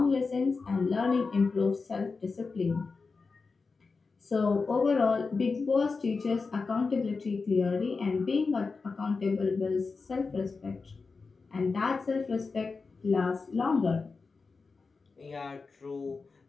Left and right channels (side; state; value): right; quieter; 4.4 dB